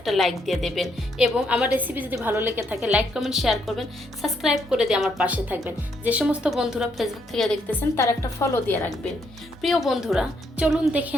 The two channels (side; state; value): both; normal; correlation 0.74